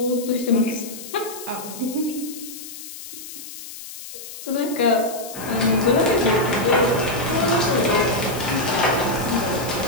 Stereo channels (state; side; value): noise; left; hiss, 12 dB below the sound